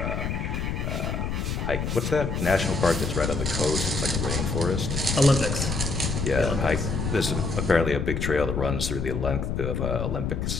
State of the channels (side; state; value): left; noise; rumble, 2 dB below the sound